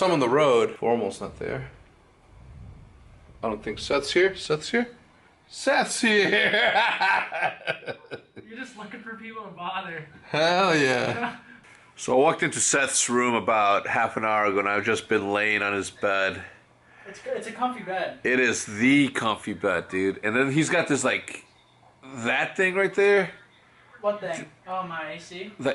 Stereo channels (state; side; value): identical; both; correlation 1.00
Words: him on the road. Formal's not there. I don't think Seth's here. Seth's here? Seth's here! You're just looking for people to bother. Hell yeah. So I walked into Seth's room about half an hour ago and I've just been laying on his bed. It's good. It's a comfy bed. It is the comfy bed, dude. And then he's got this, like, that thing right there. What thing? Oh, my AC?